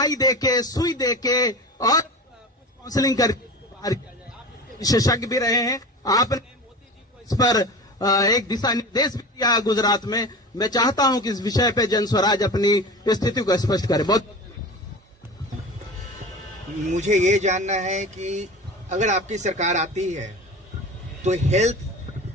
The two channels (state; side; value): normal; both; correlation 0.32